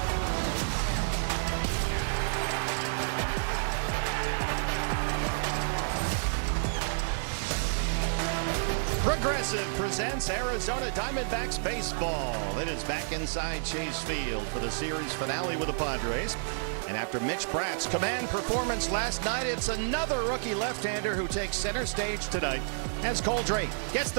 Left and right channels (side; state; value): left; silent; digital silence